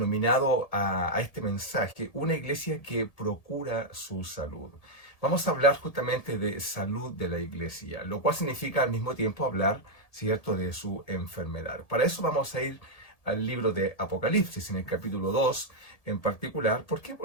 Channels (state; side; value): late; right; 1.8 ms